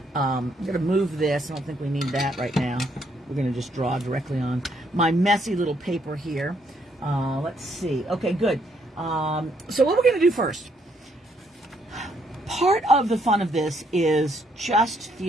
I'm going to move this. I don't think we need that right now. We're going to just draw directly on my messy little paper here. Let's see. Okay, good. So what we're going to do first, part of the fun of this is just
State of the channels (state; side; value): normal; both; correlation 0.72